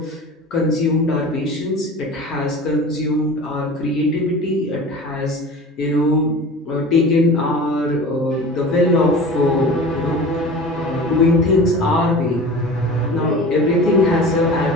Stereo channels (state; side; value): normal; both; correlation 0.37